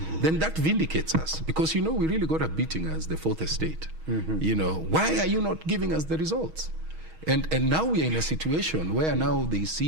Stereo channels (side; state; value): left; late; 6.3 ms